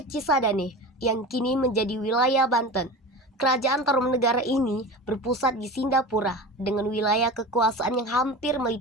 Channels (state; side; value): normal; both; correlation 0.31